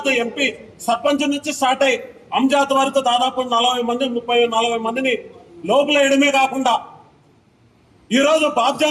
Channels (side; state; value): both; identical; correlation 1.00